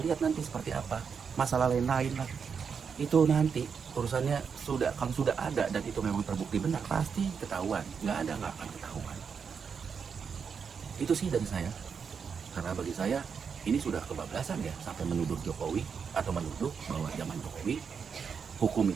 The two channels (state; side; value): quieter; left; 6.3 dB